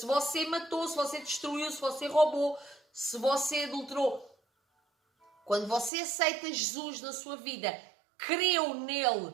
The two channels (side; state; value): left; drops out; at 5.9 s